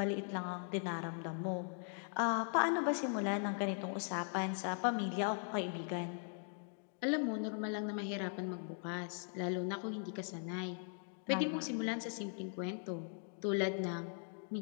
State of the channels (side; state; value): right; silent; 51 dB below the other